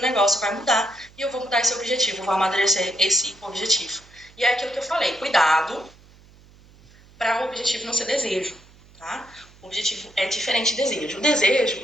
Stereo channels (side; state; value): right; noise; hum, 26 dB below the sound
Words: negócio vai mudar e eu vou mudar esse objetivo, vou amadurecer esse objetivo. E é aquilo que eu falei, cuidado para o objetivo não ser desejo, tá? O objetivo é diferente de desejo. O desejo